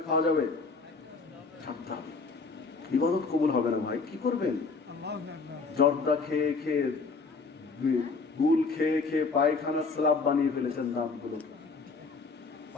খাওয়া যাবে? ছাড়তে হবে। ইবাদত কবুল হবে না ভাই, কি করবেন? জর্দা খেয়ে খেয়ে, গুল খেয়ে খেয়ে পায়খানার স্ল্যাব বানিয়ে ফেলেছেন দাঁতগুলো।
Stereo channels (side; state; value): right; quieter; 4.4 dB